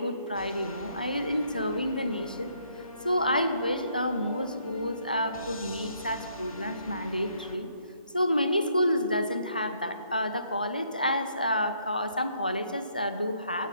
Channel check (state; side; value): inverted; both; correlation -0.69